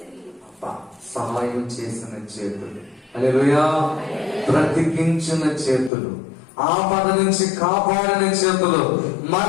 సహాయం చేసిన చేతులు, హల్లెలూయా, బ్రతికించిన చేతులు, ఆపద నుంచి కాపాడిన చేతులు,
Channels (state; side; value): drops out; right; at 5.9 s